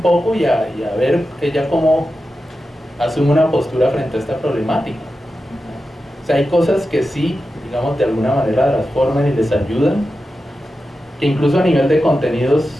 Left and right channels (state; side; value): normal; both; correlation 0.91